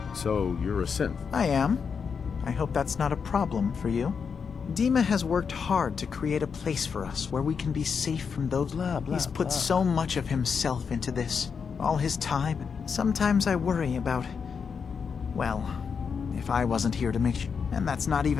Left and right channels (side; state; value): right; quieter; 6.1 dB